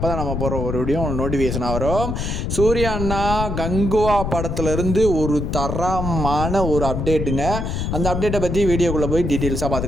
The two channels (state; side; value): noise; left; rumble, 2 dB below the sound